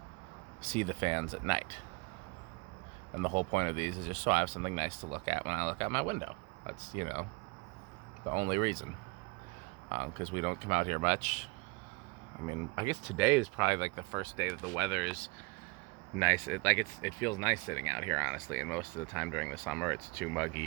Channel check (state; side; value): quieter; left; 27.4 dB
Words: see the fans at night. And the whole point of these is just so I have something nice to look at when I look out my window. That's, the only reason. Because we don't come out here much. I mean, I guess today is probably like the first day that the weather is nice. It feels nice sitting out here, honestly. And most of the time during the summer, it's too